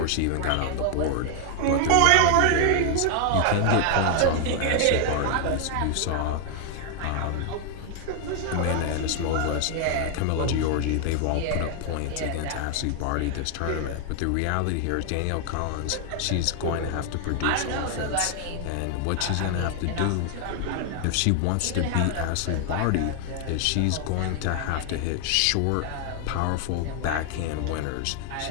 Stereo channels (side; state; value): both; different; correlation 0.00